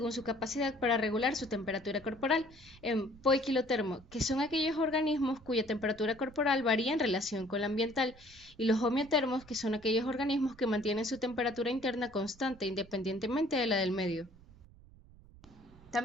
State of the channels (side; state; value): right; noise; rumble, 23 dB below the sound